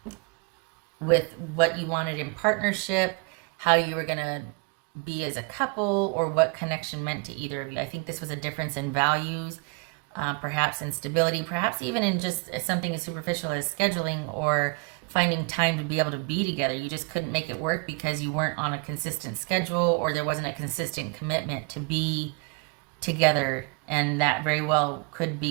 with what you wanted in partnership, how you were going to be as a couple, or what connection meant to either of you. I think this was a difference in values, perhaps in stability, perhaps even in just something as superficial as scheduling or finding time to be able to be together. You just couldn't make it work because you weren't on a consistent schedule, or there wasn't a consistent commitment to be together, and that very well could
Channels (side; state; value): left; quieter; 32.8 dB